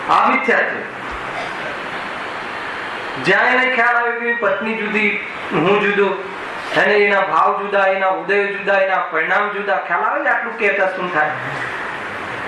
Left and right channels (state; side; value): identical; both; correlation 1.00